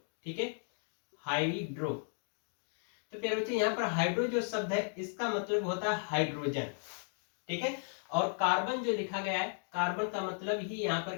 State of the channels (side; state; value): right; silent; 54 dB below the other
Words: ठीक है, हाइड्रो। तो प्यारे बच्चों, यहाँ पर हाइड्रो जो शब्द है इसका मतलब होता है हाइड्रोजन, ठीक है। और कार्बन जो लिखा गया है, कार्बन का मतलब ही यहाँ पर